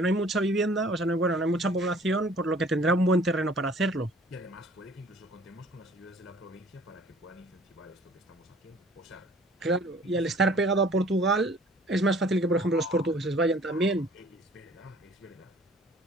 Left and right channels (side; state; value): both; normal; correlation 0.52